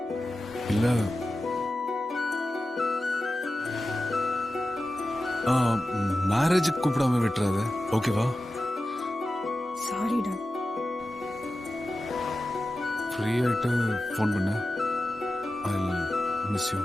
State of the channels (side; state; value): both; normal; correlation 0.93